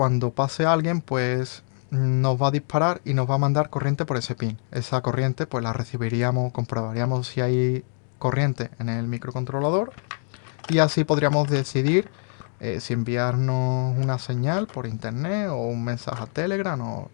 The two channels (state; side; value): silent; right; 57 dB below the other